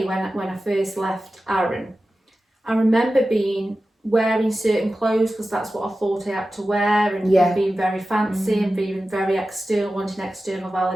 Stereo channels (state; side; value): normal; both; correlation 0.94